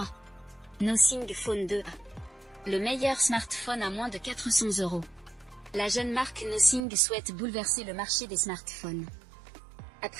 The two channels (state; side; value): drops out; left; at 6.9 s